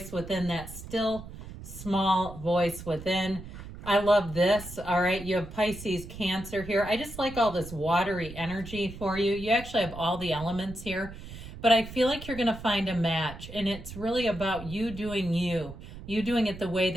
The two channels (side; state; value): right; noise; rumble, 13 dB below the sound